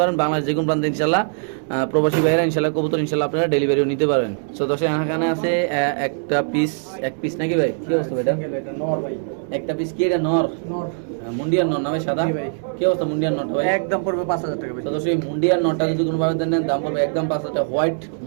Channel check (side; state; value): left; silent; digital silence